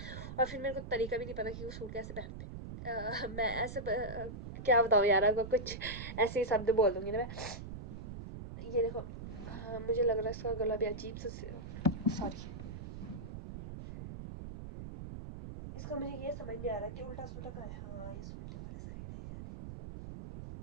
और फिर मेरे को तरीका भी नहीं पता कि वो सूट कैसे पहनते। मैं ऐसे क्या बताऊँ यार, आपको कुछ ऐसे ही शब्द बोल दूँगी ना मैं। ये देखो, हाँ, मुझे लग रहा है इसका गला भी अजीब सा, सॉरी, इसका मुझे ये समझ नहीं आ रहा कि उल्टा सुल्टा का है। हाँ, ये उल्टे वाले साइड है यार,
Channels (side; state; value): right; noise; rumble, 9 dB below the sound